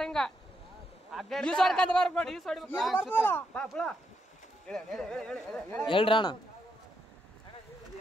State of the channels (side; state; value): both; normal; correlation 0.80